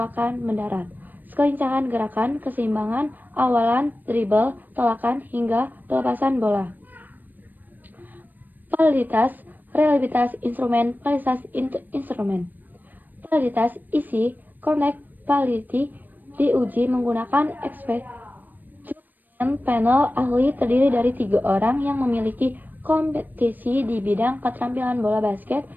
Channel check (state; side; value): late; left; 0.089 ms